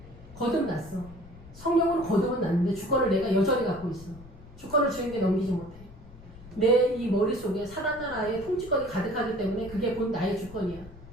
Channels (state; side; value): noise; left; rumble, 18 dB below the sound